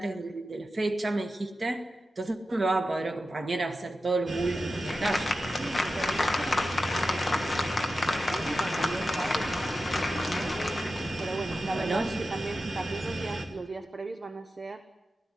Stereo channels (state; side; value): normal; both; correlation 0.92